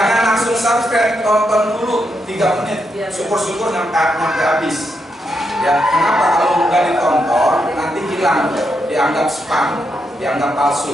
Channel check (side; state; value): both; normal; correlation 0.82